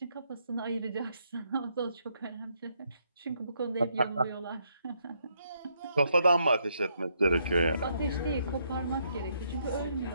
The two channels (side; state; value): both; inverted; correlation -0.75